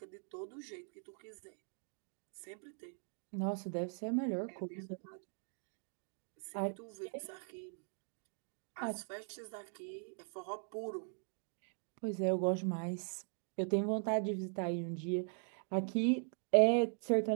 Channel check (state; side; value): silent; left; 51 dB below the other